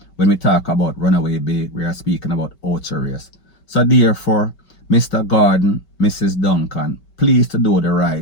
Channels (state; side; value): late; right; 5.2 ms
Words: When we talk about Runaway Bay, we are speaking about Ocho-Race. So therefore, Mr. Gordon, Mrs. Duncan, please to do the